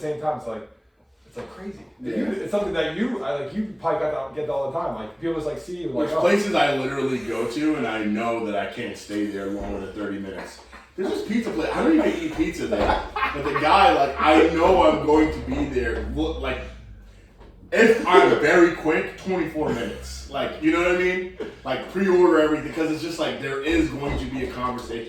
time it's crazy. Yeah. It's something that you probably get that all the time. People just see you There's places I literally go to and I know that I can't stay there longer than 30 minutes. There's this pizza place. I don't even eat pizza there. But the guy, I know I'm going to be there. If I'm very quick, 24 minutes. You know what I mean? Pre-order everything because it's just there is going to be a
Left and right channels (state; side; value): identical; both; correlation 1.00